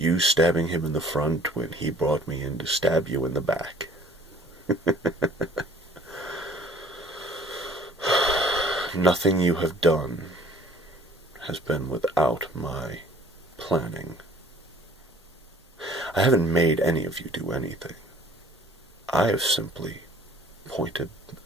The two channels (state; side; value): normal; both; correlation 0.53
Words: stabbing him in the front when he brought me in to stab you in the back. Nothing you have done has been without my planning. I haven't made any of you do anything. I have simply pointed